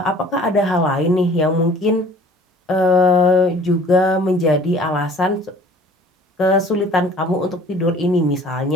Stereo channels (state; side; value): normal; both; correlation 0.49